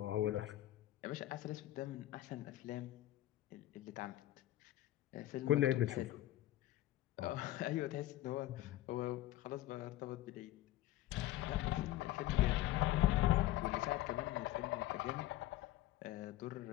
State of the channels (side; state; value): right; quieter; 15.1 dB